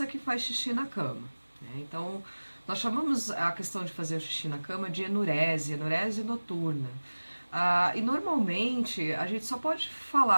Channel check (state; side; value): inverted; both; correlation -1.00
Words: que faz xixi na cama, né? Então, nós chamamos a questão de fazer o xixi na cama de enurese noturna. E normalmente a gente só pode